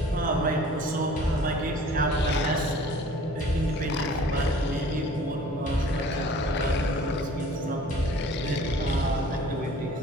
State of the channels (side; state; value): both; normal; correlation 0.49